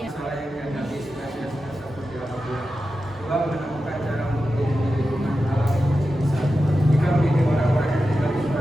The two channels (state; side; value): normal; both; correlation 0.92